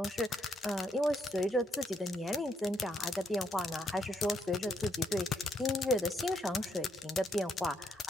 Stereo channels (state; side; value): normal; both; correlation 0.75